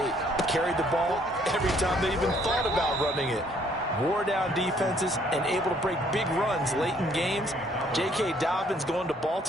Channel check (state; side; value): normal; both; correlation 0.64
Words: Carried the ball every time they even thought about running it. Wore down defenses and able to break big runs late in games. J.K. Dobbins going to